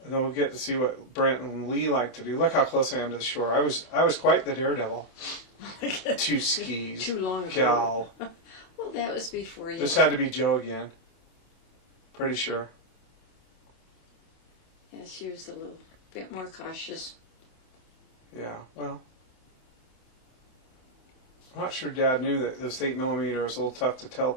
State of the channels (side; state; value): right; late; 27 ms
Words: And then we'll get to see what Brent and Lee like to do. Look how close I am to the shore. I was quite the daredevil. 2 skis. Too long ago. Gal. Well, that was before you. This had to be Joe again. Pretty sure. Yeah, she was a little bit more cautious. Yeah, well. I'm not sure Dad knew that this 8mm was a little tough to tell